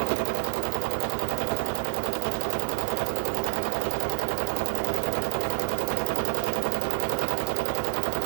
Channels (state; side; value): silent; left; 56 dB below the other